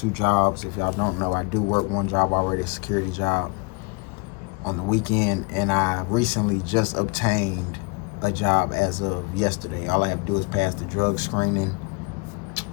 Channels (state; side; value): quieter; right; 31.0 dB